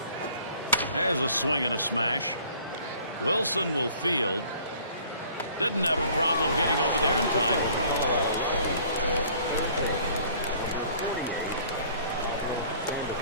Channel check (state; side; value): inverted; both; correlation -0.54